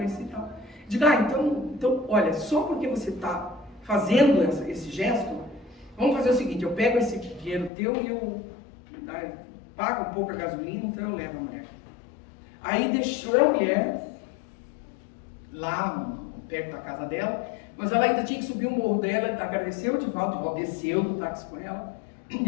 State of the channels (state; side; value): drops out; right; at 7.7 s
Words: e tal. Digo, então, olha, só porque você está fazendo esse gesto, vamos fazer o seguinte, eu pego esse dinheiro teu e eu pago um pouco a gasolina, então eu levo a mulher. Aí deixou a mulher lá perto da casa dela, mas ela ainda tinha que subir o morro dela, agradeceu o Divaldo desceu do táxi com ela, e